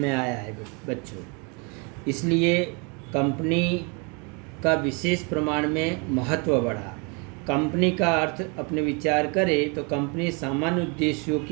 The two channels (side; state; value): left; quieter; 32.6 dB